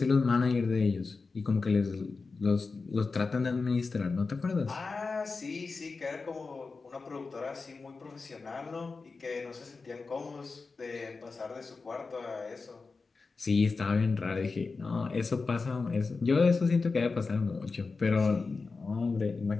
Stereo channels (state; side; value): quieter; right; 4.3 dB